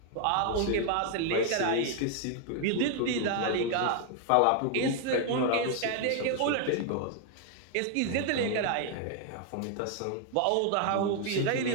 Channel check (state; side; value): different; both; correlation 0.00